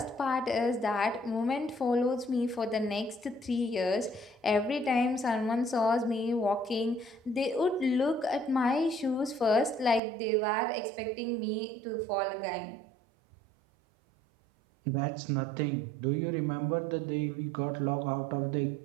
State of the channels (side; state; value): left; drops out; at 10.0 s